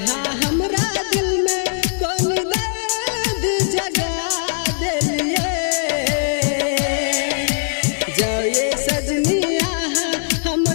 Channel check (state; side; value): silent; right; digital silence